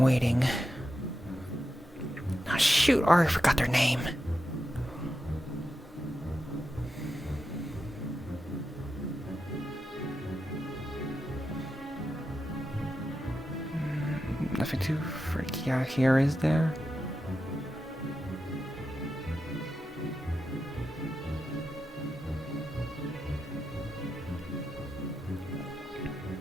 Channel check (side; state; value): both; normal; correlation 0.89